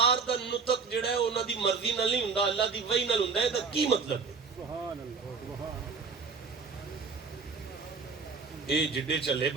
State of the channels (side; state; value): left; quieter; 4.9 dB